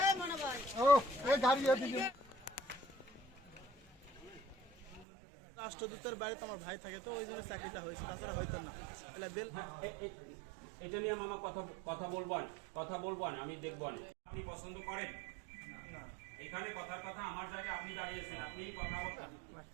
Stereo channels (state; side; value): drops out; left; at 5.1 s